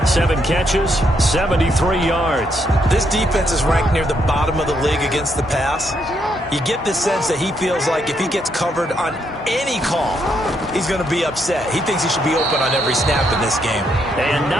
7 catches, 73 yards. This defense is ranked near the bottom of the league against the pass. You get the sense that he feels like if he gets covered on any call, he's going to be upset. He thinks he should be open on every snap in this game. And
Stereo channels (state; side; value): normal; both; correlation 0.76